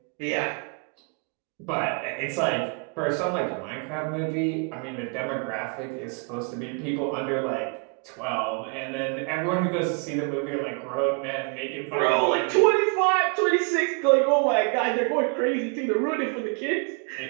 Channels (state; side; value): quieter; left; 38.3 dB